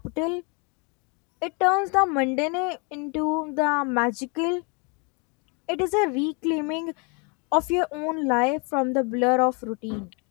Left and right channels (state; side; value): quieter; right; 33.7 dB